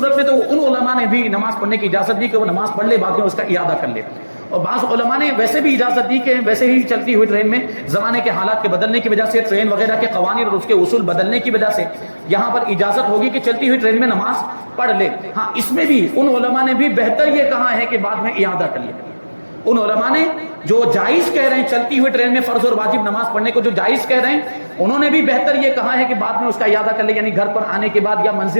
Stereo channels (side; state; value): both; inverted; correlation -1.00